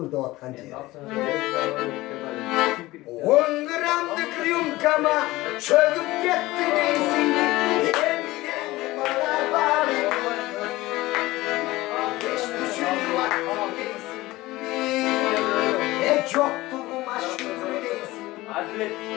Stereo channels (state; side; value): quieter; right; 18.8 dB